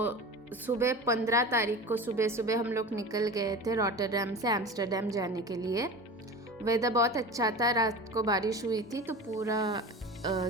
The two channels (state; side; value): normal; both; correlation 0.32